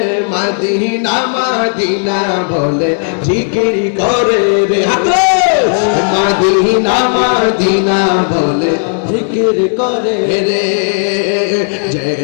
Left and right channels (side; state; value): right; silent; digital silence